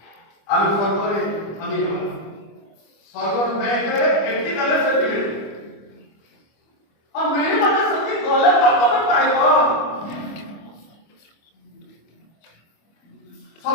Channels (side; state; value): right; late; 25 ms